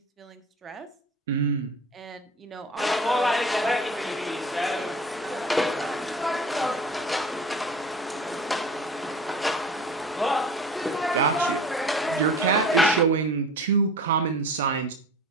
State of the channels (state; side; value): normal; both; correlation 0.39